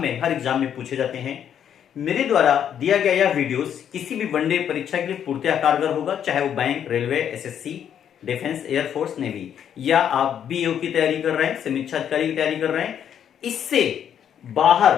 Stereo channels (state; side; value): quieter; right; 9.1 dB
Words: एग्जाम में पूछे जाते हैं। मेरे द्वारा दिया गया यह वीडियोस किसी भी वनडे परीक्षा के लिए पूर्णतः कारगर होगा, चाहे वो bank, railway, SSC, defence, air force, navy, या आप बीओ की तैयारी कर रहे हैं, समीक्षा अधिकारी की तैयारी कर रहे हैं। इससे बाहर